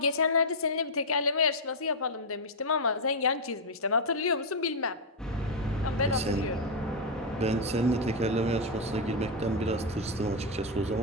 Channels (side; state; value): both; normal; correlation 0.00